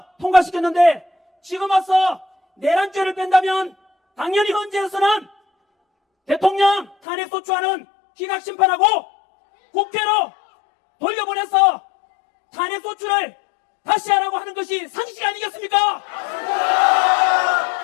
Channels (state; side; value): drops out; right; at 7.0 s